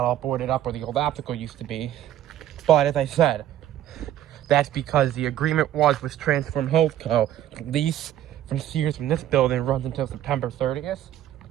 all boarded up where the old optical used to be. But as I said, that's because the agreement was with Transform Co. The lease from Sears from this building runs until September 30th.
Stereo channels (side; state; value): left; quieter; 12.1 dB